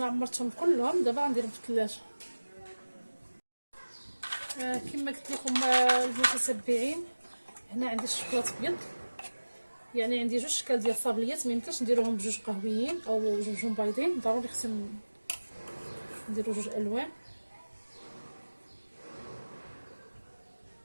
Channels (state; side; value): inverted; both; correlation -1.00